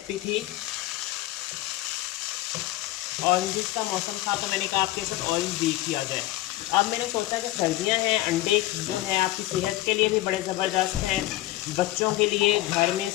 थी। ऑरेंज का मौसम था तो मैंने कहा आपके साथ ऑरेंज भी किया जाए। अब मैंने सोचा कि सर्दियां हैं, अंडे जो है आपकी सेहत के लिए भी बड़े ज़बरदस्त हैं, बच्चों के लिए घर में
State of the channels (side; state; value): right; quieter; 16.9 dB